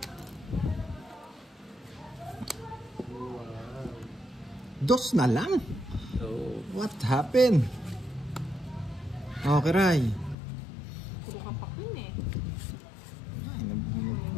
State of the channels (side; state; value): right; drops out; at 10.4 s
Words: Dos na lang? So, What happened? Okay, Ray. Puro kapak yun eh. Ay, nabunod